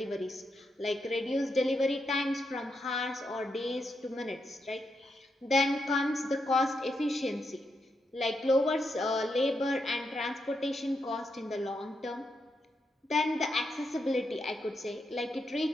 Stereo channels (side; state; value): both; normal; correlation 0.83